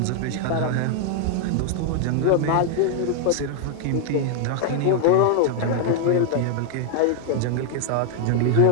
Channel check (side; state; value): both; different; correlation 0.00